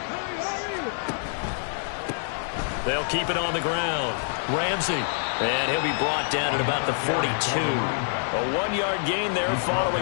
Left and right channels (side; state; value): right; silent; 61 dB below the other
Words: They'll keep it on the ground. Ramsey. And he'll be brought down at about the 42. A 1-yard gain there